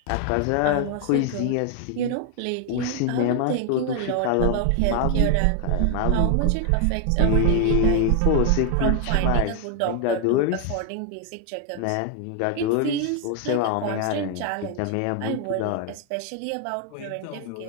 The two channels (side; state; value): both; different; correlation 0.01